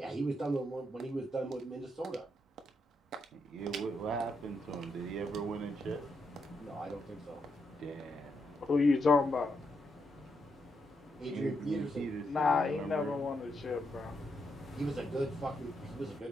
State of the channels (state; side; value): normal; both; correlation 0.81